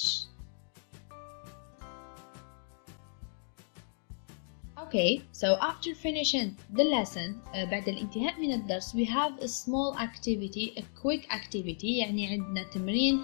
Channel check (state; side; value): silent; right; digital silence